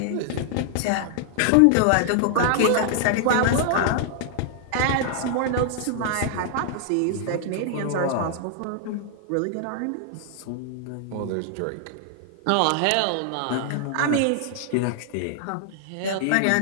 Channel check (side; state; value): both; different; correlation 0.00